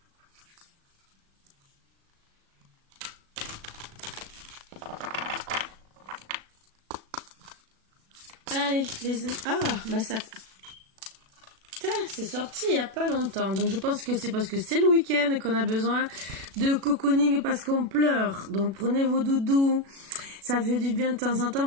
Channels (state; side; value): late; left; 36 ms